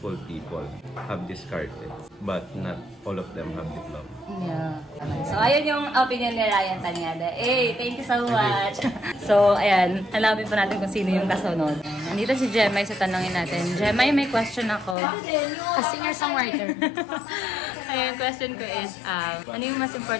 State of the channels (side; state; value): right; drops out; at 15.0 s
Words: people have discarded, but not all of them have diploma. Yeah. So, ayun yung opinion ni Ryan Tanyada. Thank you so much. So, ayan. Hanapin pa natin kung sino yung kasunod. Nandito si Jemay sa tanongin natin. Jemay, may question ako. A singer-songwriter. Ayun, question ko is, ano yung mas